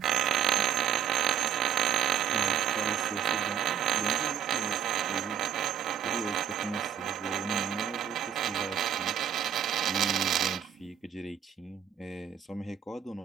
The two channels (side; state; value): left; quieter; 9.1 dB